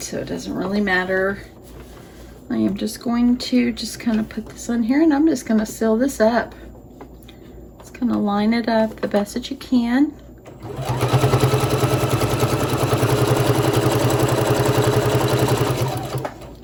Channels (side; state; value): both; identical; correlation 1.00